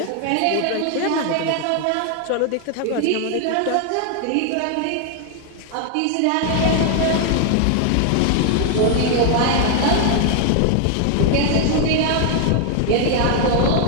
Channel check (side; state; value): both; different; correlation 0.00